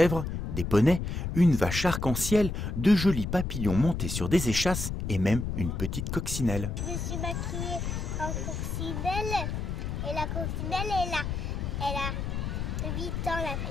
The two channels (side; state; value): left; noise; rumble, 3 dB below the sound